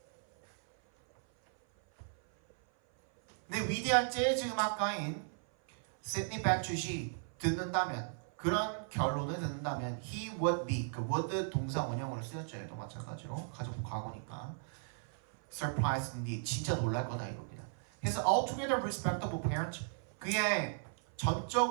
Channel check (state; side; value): silent; left; 54 dB below the other